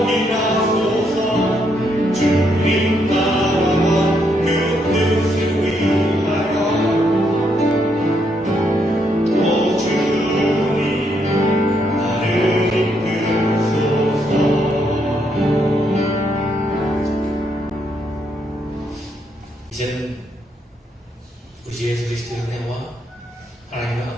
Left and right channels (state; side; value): normal; both; correlation 0.76